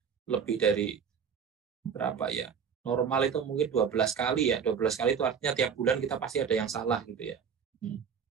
lebih dari berapa ya, normal itu mungkin 12 kali ya, 12 kali itu artinya tiap bulan kita pasti ada yang salah gitu ya.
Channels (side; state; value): left; quieter; 6.9 dB